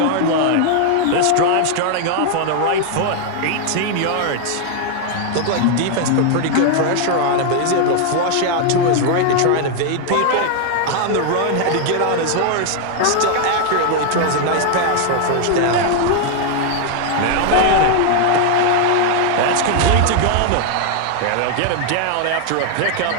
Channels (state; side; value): different; both; correlation 0.00